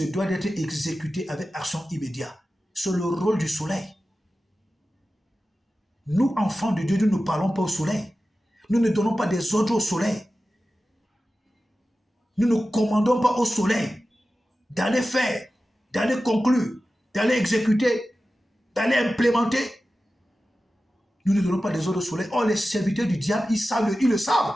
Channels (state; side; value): normal; both; correlation 0.94